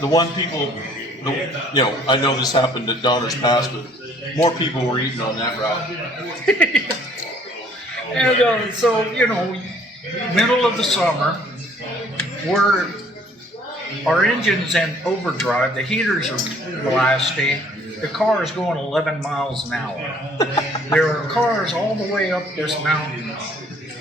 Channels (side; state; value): both; normal; correlation 0.58